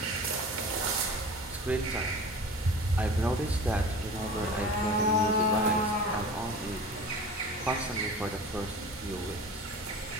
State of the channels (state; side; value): normal; both; correlation 0.38